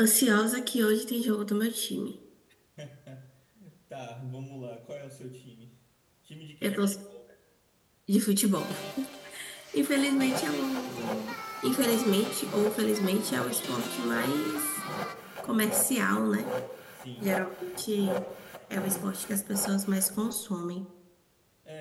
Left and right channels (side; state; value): both; identical; correlation 1.00